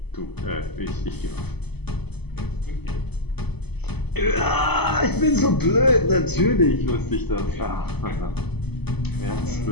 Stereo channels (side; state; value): right; late; 0.98 ms